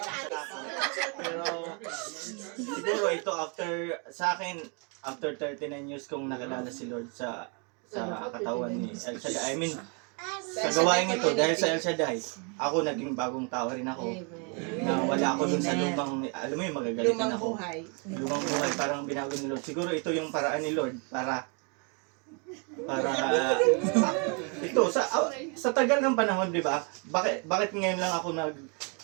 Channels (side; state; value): left; quieter; 36.0 dB